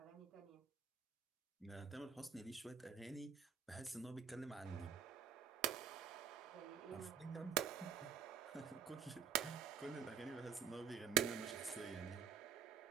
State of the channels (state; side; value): quieter; left; 7.7 dB